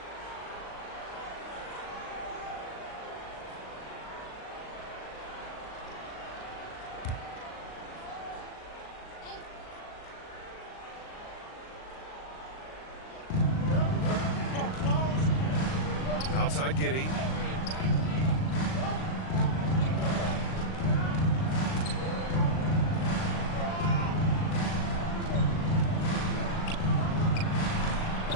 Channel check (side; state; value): right; late; 38 ms